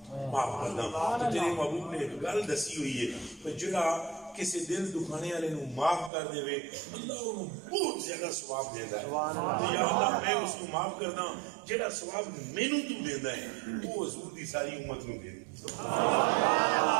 تو تیرے محبوب نے ایک گل دسی ہوئی ہے کہ جڑا کسی دل دکھانے والے نو معاف کر دے اللہ انہوں بہت زیادہ ثواب دیتا ہے، یا اللہ میں اس کو معاف کردا جڑا ثواب مینوں تو دیندا ہے وہ حضور دی ساری امت نو دے۔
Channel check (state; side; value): drops out; left; at 6.1 s